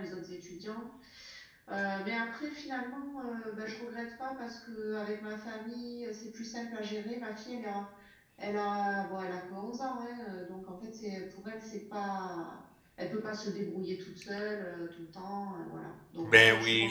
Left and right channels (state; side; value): identical; both; correlation 1.00